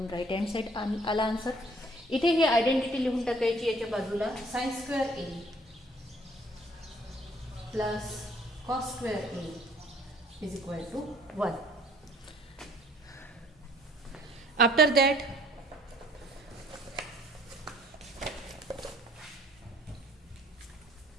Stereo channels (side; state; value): both; normal; correlation 0.59